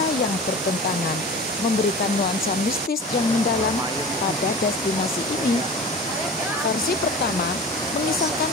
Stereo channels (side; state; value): both; normal; correlation 0.36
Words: yang bertentangan, memberikan nuansa mistis yang mendalam pada destinasi ini. Versi pertama mengisahkan